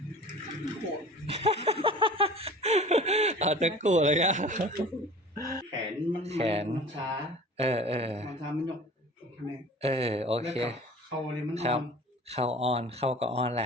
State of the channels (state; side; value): normal; both; correlation 0.42